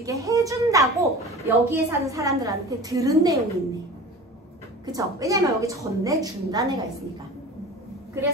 해준다고 여기에 사는 사람들한테 들은 내용이 있네. 그쵸? 왜냐면 여기 전내준다는 애가 있으니까.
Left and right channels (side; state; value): both; normal; correlation 0.37